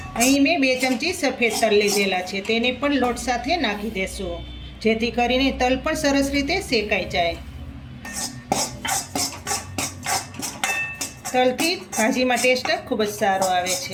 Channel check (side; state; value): both; identical; correlation 1.00